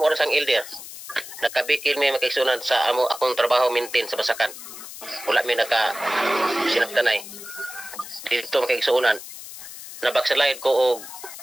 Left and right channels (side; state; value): left; noise; hiss, 13 dB below the sound